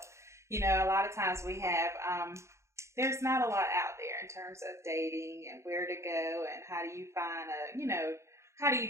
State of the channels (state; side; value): late; left; 0.14 ms